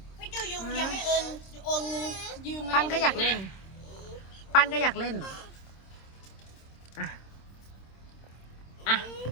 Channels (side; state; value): right; late; 26 ms